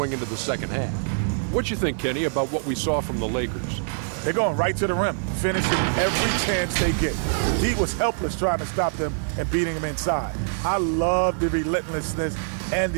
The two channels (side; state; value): left; silent; 56 dB below the other